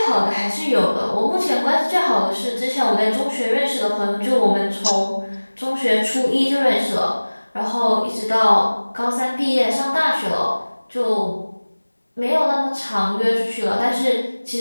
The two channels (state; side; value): inverted; both; correlation -1.00